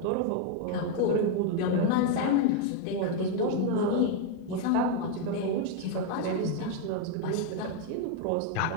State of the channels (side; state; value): both; different; correlation 0.01